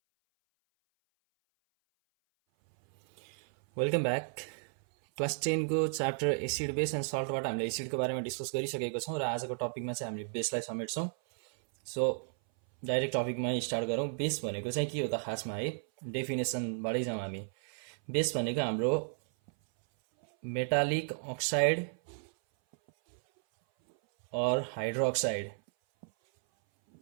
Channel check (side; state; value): left; silent; 56 dB below the other